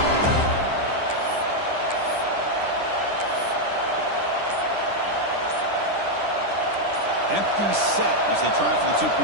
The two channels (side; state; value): left; late; 10 ms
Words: Empty set as they try for the